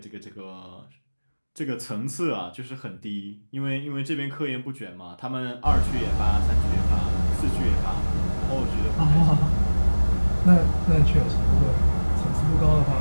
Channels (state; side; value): inverted; both; correlation -1.00